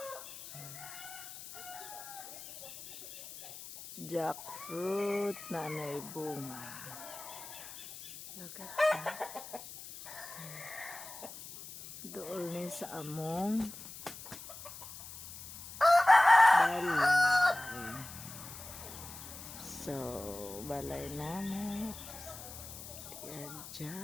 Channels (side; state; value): left; noise; hiss, 13 dB below the sound